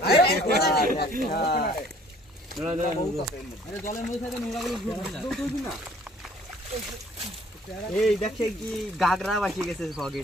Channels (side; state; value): both; normal; correlation 0.56